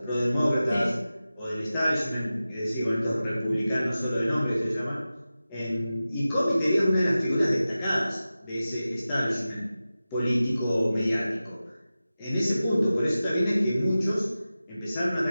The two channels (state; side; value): inverted; both; correlation -0.95